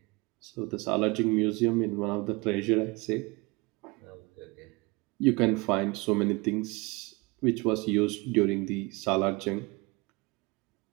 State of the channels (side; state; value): left; quieter; 25.7 dB